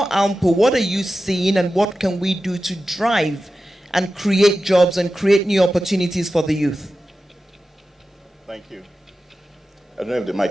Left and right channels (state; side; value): normal; both; correlation 0.93